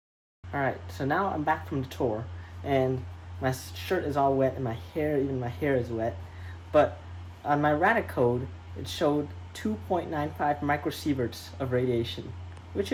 Alright, so now I'm back from the tour, and my shirt is all wet, and my hair is wet, but on my Radic code, it showed 2.95 microsieverts of radiation, which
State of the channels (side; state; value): both; identical; correlation 1.00